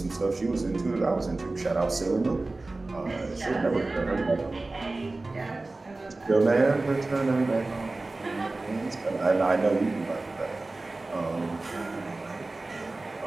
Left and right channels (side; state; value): left; quieter; 3.2 dB